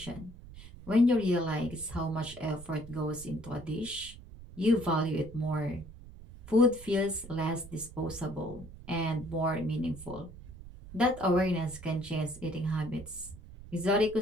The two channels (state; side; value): noise; right; rumble, 16 dB below the sound